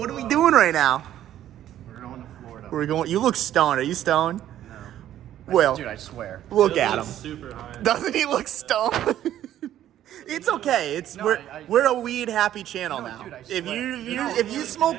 are we doing right now? We're going to Florida. We're going. You look stoned. Are you stoned? No. Well, Dude, I swear. look It at him. looks super high. Doesn't he look stoned? It's okay. It's No, we're a weed happy channel No, now. dude, I If swear. if you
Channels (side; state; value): left; quieter; 11.9 dB